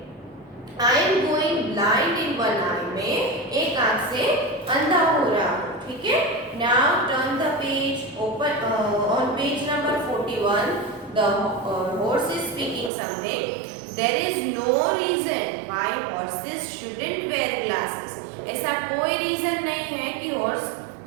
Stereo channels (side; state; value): left; drops out; at 12.9 s